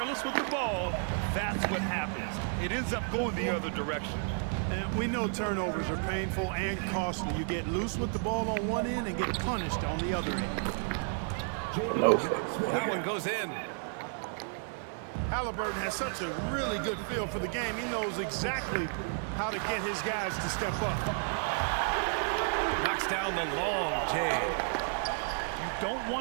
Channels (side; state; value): left; silent; 56 dB below the other